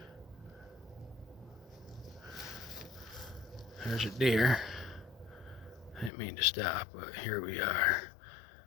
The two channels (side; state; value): right; drops out; at 6.1 s